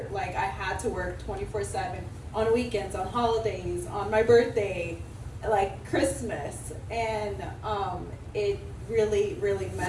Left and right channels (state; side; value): identical; both; correlation 1.00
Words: like I had to work 24/7 on weekends, on holidays, on my birthday, like Christmas, and it really, really